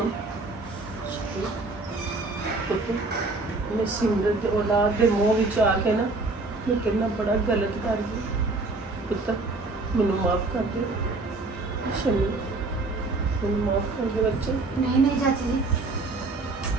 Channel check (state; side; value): quieter; left; 3.4 dB